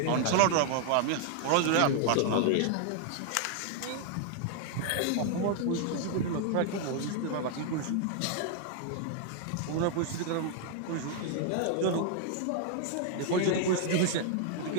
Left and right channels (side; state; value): both; different; correlation 0.00